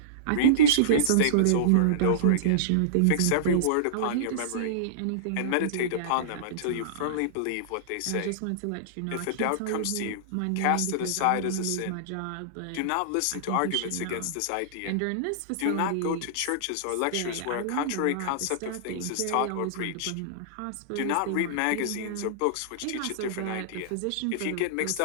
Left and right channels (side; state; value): both; different; correlation -0.02